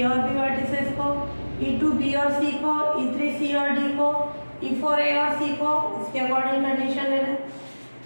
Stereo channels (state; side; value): inverted; both; correlation -1.00